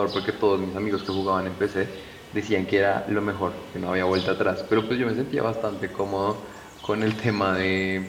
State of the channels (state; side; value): identical; both; correlation 1.00